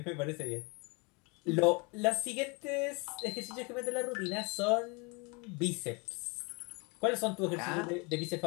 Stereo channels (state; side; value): quieter; right; 29.9 dB